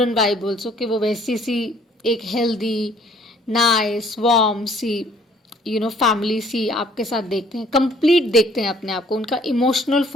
vibe also, कि वो वैसी सी एक healthy nice warm सी family सी आपके साथ देखते हैं, complete देखते हैं अपने आप को, उनका इमोशनल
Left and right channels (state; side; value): normal; both; correlation 0.59